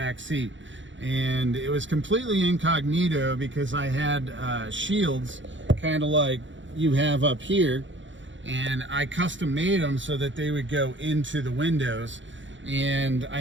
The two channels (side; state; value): left; late; 0.55 ms